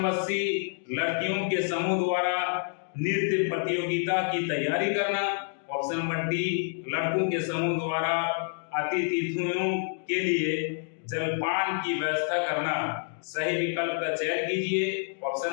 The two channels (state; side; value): silent; right; 59 dB below the other